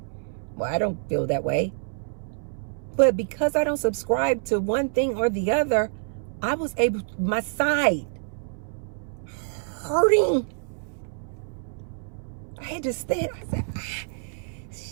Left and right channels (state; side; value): silent; left; 60 dB below the other